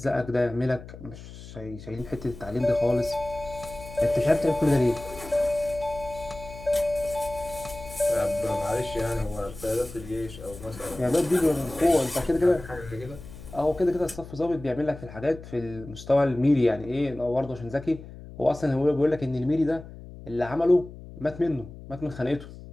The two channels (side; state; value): left; noise; hum, 15 dB below the sound